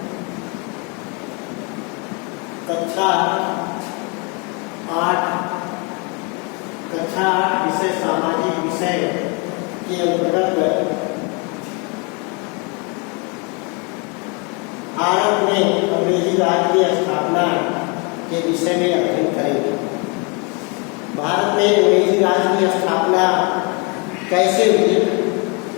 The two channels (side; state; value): right; quieter; 32.3 dB